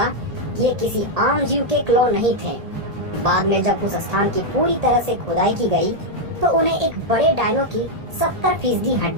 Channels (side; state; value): left; late; 1.8 ms